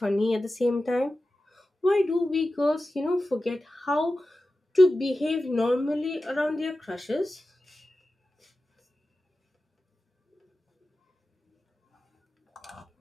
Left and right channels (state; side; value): normal; both; correlation 0.94